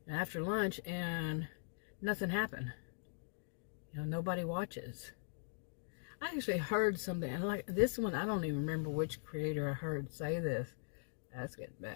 after lunch, and nothing happened. Nobody watches. I actually heard something, and like this one, I don't even remember which creator I heard say this. That's getting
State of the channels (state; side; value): silent; right; digital silence